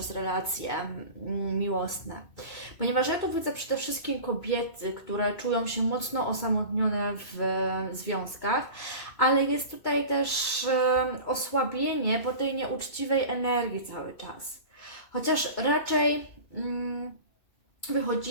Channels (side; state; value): right; late; 2.2 ms